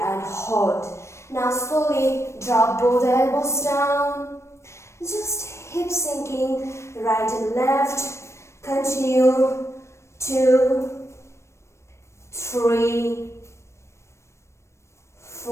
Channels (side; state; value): right; late; 0.13 ms